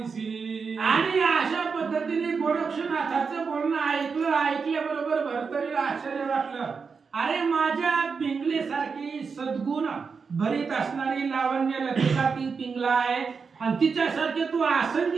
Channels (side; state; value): left; quieter; 5.4 dB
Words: आणि अशा पद्धतीने गोरक्षनाथाचं बोलणं ऐकल्याबरोबर भरतरीला आश्चर्य वाटलं. अरे माझ्या पिंगलेसारखी सद्गुण भरीत असणारी लावण्य लतिका ती पिंगला आहे आणि तिच्यासारखे तू